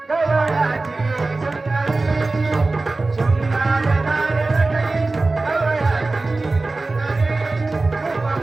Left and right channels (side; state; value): left; quieter; 3.3 dB